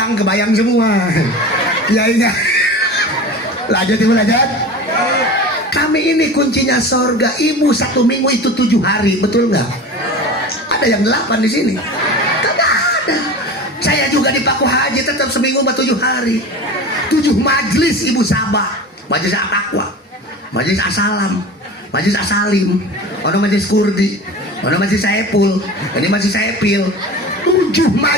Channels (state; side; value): normal; both; correlation 0.34